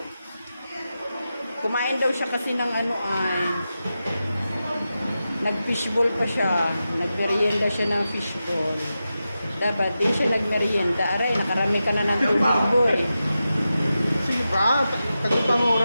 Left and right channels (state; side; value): inverted; both; correlation -0.91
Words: Kumain daw siya kasi ng nag-fishball pa siya. Nagmerienda siya ng fishball. Dapat din siya nagmerienda. Aray, nakarami ka na ng tubig, boy. Sige ba? Tagupang